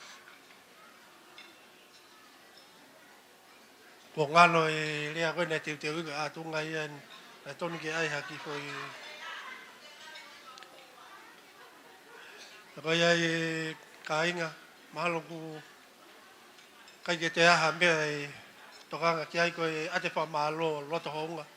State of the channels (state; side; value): identical; both; correlation 1.00